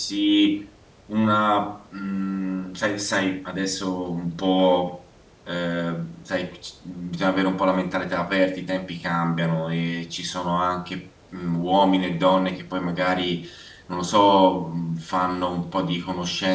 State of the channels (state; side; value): identical; both; correlation 1.00